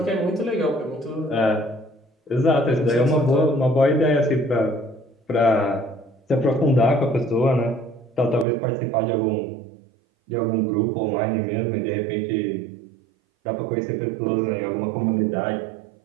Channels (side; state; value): left; drops out; at 8.5 s